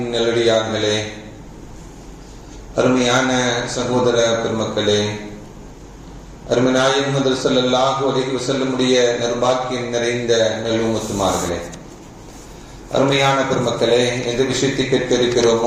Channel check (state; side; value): identical; both; correlation 1.00